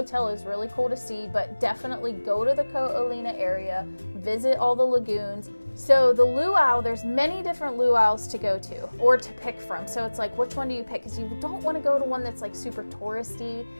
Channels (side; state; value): both; inverted; correlation -1.00